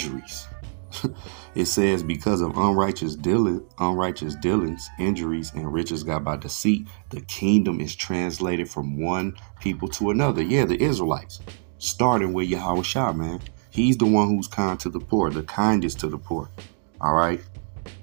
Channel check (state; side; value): silent; left; digital silence